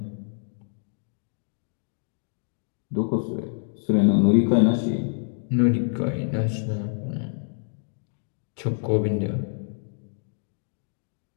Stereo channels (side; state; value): right; silent; 60 dB below the other